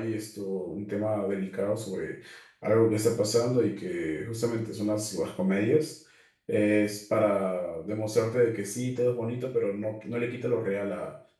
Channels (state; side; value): identical; both; correlation 1.00